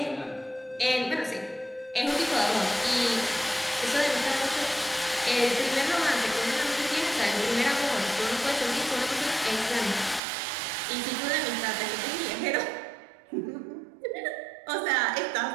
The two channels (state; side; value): drops out; left; at 10.2 s